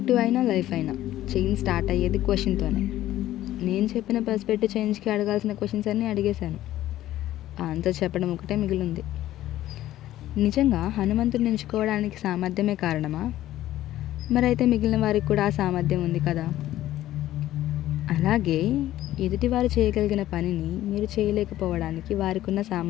అయినా లైఫ్ అయినా చేంజ్ స్టార్ట్ అయ్యేది క్వశ్చన్తోనే. నేను చెప్పిన పర్స్పెక్టివ్ చేంజ్కి అడగాల్సిన క్వశ్చన్స్ అన్నీ అడిగేశాను. ఆన్సర్ చెప్పడం ఒకటే మిగిలింది. నిజంగా హనుమంతుడిని ఎంచుకోవడానికి సామర్థ్యమే కారణమా? మరైతే మిగిలిన వారికి కూడా ఆ సామర్థ్యం ఉంది కదా. అలాగే ఎదుటివారు చేయగలిగిన పనిని మీరు చేయలేకపోవడానికి వారికి ఉన్న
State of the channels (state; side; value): quieter; right; 14.0 dB